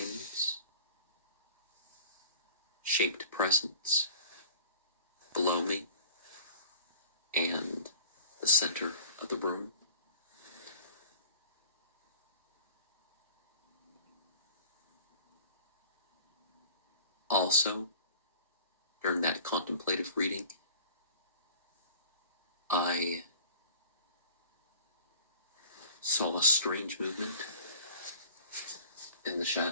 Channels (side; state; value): both; inverted; correlation -0.45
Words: shaped presence below me and the center of the room. Also, during that contemplative reading, I saw a strange movement in the